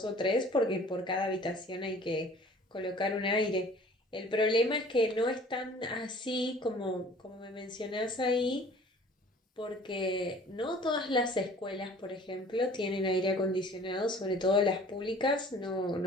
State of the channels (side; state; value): both; normal; correlation 0.49